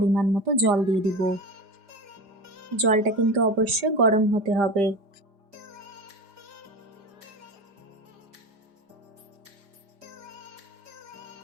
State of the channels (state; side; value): late; left; 5.0 ms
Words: মতো জল দিয়ে দিব। জলটা কিন্তু অবশ্যই গরম হতে হবে।